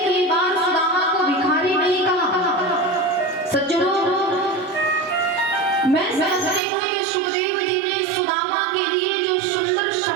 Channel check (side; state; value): left; drops out; at 6.6 s